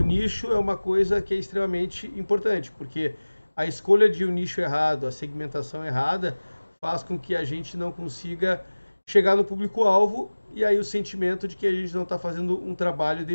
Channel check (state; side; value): inverted; both; correlation -1.00